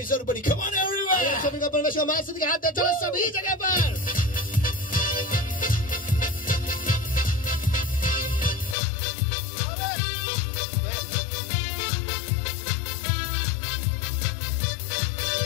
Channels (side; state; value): right; drops out; at 8.8 s